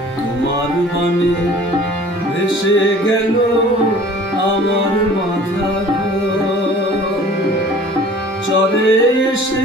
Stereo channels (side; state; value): both; normal; correlation 0.48